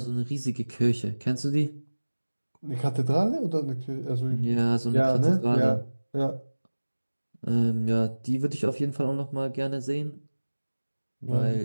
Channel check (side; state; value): both; inverted; correlation -1.00